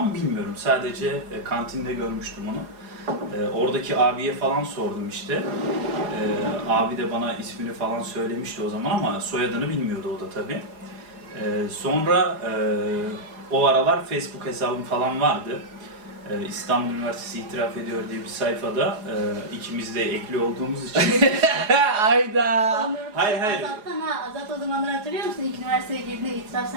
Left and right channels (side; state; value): left; late; 4.8 ms